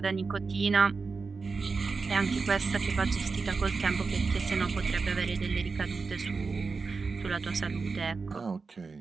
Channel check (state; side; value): quieter; left; 4.5 dB